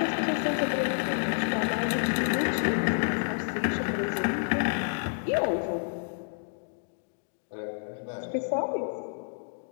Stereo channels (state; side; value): silent; right; digital silence